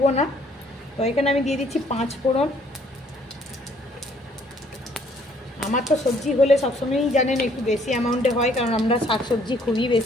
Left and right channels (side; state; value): both; normal; correlation 0.63